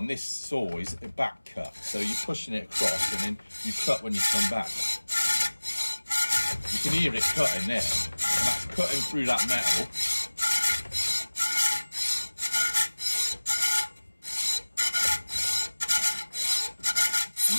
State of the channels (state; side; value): inverted; both; correlation -1.00